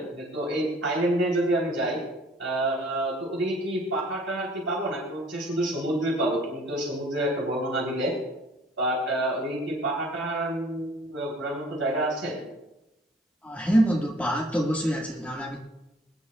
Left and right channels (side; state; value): both; normal; correlation 0.54